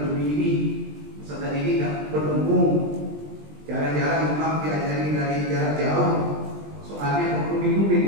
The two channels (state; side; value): late; left; 20 ms